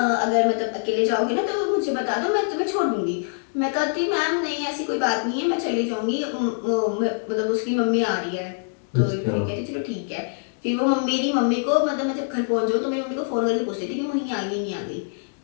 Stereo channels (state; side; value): silent; right; digital silence